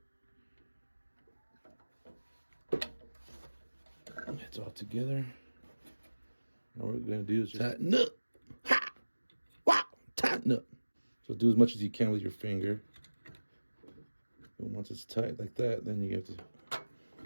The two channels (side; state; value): both; inverted; correlation -1.00